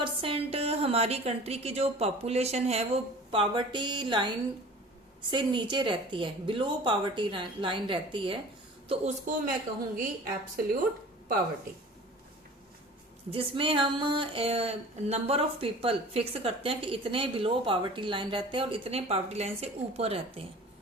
हमारी कंट्री की जो पॉपुलेशन है वो पावर्टी लाइन से नीचे रहती है, बिलो पावर्टी लाइन रहती है, तो उसको मैं कहूंगी एब्सोल्यूट पावर्टी, जिसमें हम नंबर ऑफ पीपल फिक्स करते हैं कि इतने बिलो पावर्टी लाइन रहते हैं और इतने पावर्टी लाइन से ऊपर रहते हैं।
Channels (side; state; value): both; normal; correlation 0.42